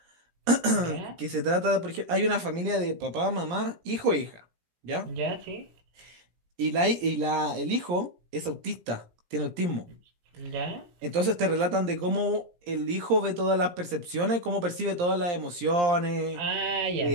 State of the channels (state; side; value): late; left; 17 ms